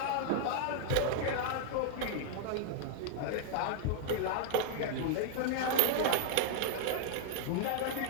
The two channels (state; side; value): different; both; correlation 0.00